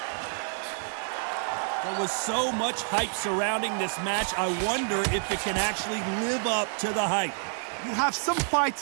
There was so much hype surrounding this match, I wonder if it can actually live up to the hype. You have some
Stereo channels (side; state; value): left; silent; 59 dB below the other